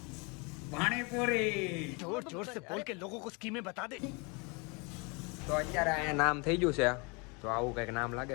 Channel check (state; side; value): quieter; right; 30.5 dB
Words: પાણીપુરી જોર જોર સે બોલ કે લોકો કો સ્કીમે બતા દે. તો અત્યારે અહીંયા નામ થઈ ગયું છે. તો આવું કંઈક નામ